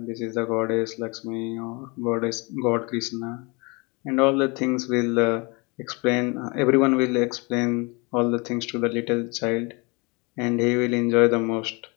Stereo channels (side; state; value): right; quieter; 28.6 dB